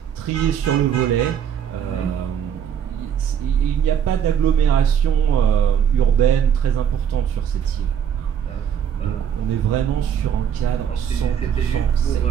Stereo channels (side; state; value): left; quieter; 8.4 dB